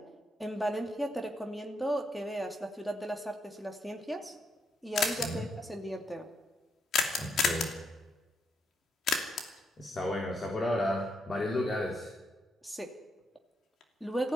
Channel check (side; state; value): both; normal; correlation 0.79